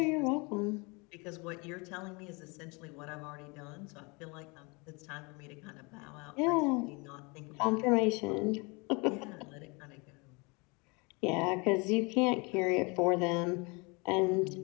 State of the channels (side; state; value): right; quieter; 29.0 dB